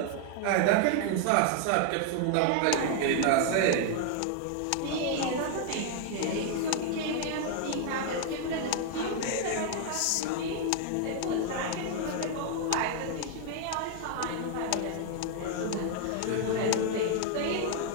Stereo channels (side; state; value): both; different; correlation 0.00